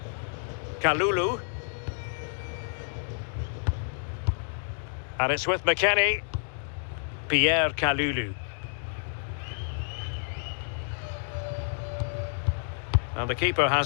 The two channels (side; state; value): right; silent; 58 dB below the other